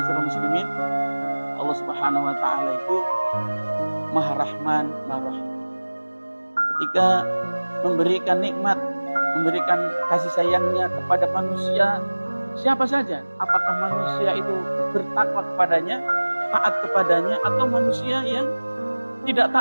muslimin, Allah Subhanahu wa taala itu Maha Rahman, Maha Rahim. Ketika memberikan nikmat, memberikan kasih sayangnya kepada manusia, siapa saja, apakah manusia itu bertakwa kepadanya, taat kepadanya, atau manusia yang tidak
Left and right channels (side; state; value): both; inverted; correlation -1.00